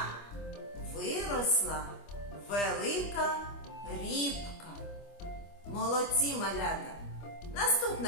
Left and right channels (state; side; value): late; right; 25 ms